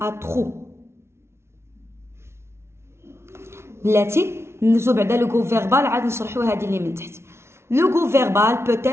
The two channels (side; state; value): left; late; 0.13 ms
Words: trop. بلاتي ندوزو بعدا لو groupe verbal عاد نشرحو هادي اللي من تحت. Le groupe verbal peut